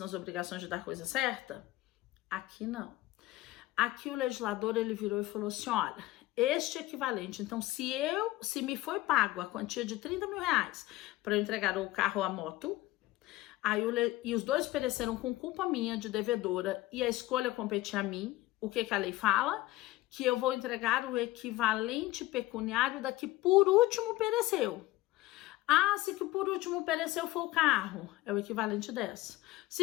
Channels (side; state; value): right; quieter; 17.6 dB